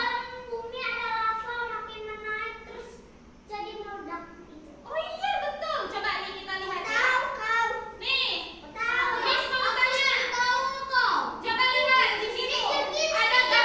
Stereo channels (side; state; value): both; identical; correlation 1.00